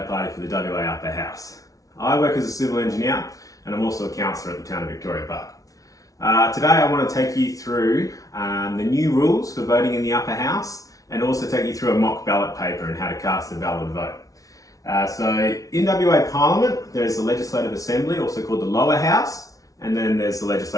Party for the WA Upper House. I work as a civil engineer and I'm also a councillor at the town of Victoria Park. Today I want to take you through the new rules for voting in the Upper House and also take you through a mock ballot paper and how to cast a valid vote. So in WA Parliament there's the Legislative Assembly, also called the Lower House, and then there's the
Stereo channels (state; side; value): late; right; 0.17 ms